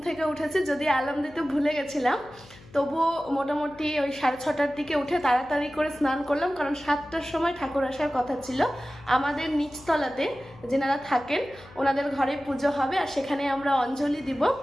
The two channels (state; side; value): noise; left; hum, 22 dB below the sound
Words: থেকে উঠেছি, যদি অ্যালার্ম দিতে ভুলে গেছিলাম, তবুও মোটামুটি ওই 6:30টার দিকে উঠে তাড়াতাড়ি করে স্নান করলাম, কারণ 7টার সময় ঠাকুর আসার কথা ছিল। আমাদের নিচতলাতে যেনারা থাকেন ওনাদের ঘরে পুজো হবে, আর সেখানে আমরা অঞ্জলি দিব।